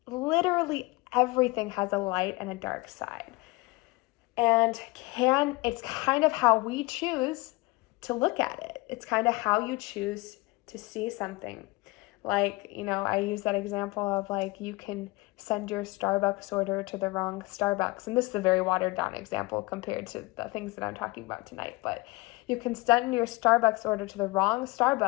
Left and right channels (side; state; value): right; quieter; 23.2 dB